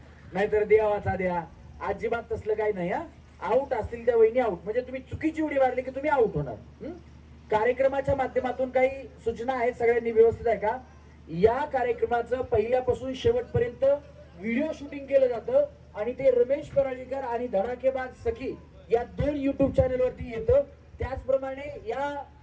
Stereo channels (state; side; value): identical; both; correlation 1.00